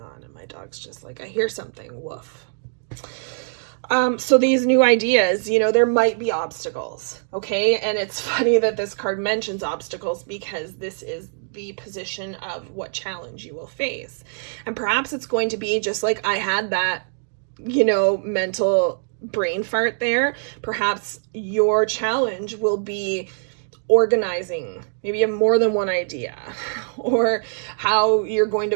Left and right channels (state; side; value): silent; left; digital silence